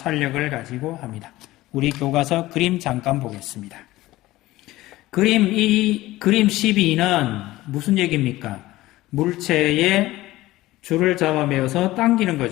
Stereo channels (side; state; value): right; quieter; 17.4 dB